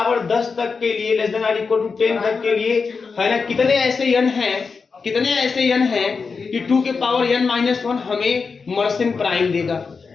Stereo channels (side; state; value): right; quieter; 5.0 dB